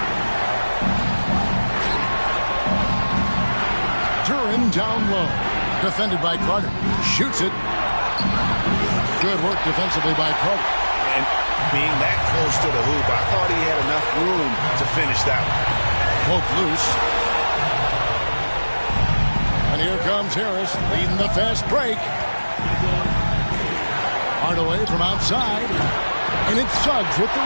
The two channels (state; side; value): inverted; both; correlation -1.00